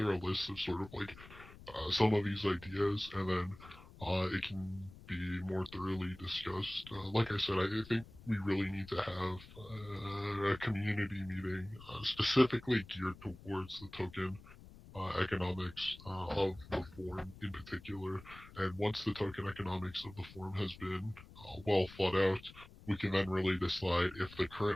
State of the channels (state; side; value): noise; left; rumble, 19 dB below the sound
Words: a list of sort of like some of these ideas, and then it can be more thoroughly discussed. Like I said, I think we really need to have a community meeting specifically geared towards the token economics of the form in particular. And once the token economics of the form has been well thought out, we can then really decide if the